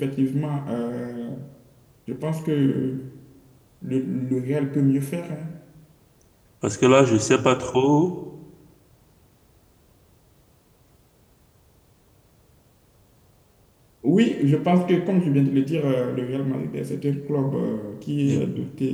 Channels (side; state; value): both; identical; correlation 1.00